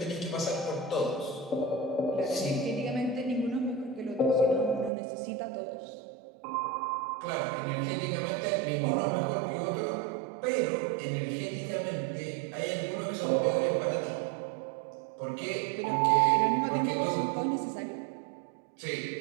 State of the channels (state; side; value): drops out; left; at 4.9 s